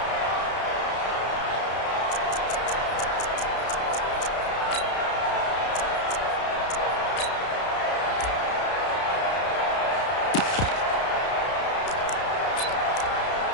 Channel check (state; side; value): late; right; 32 ms